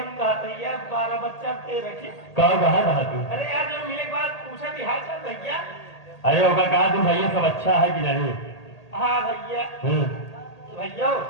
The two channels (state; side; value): late; right; 1.8 ms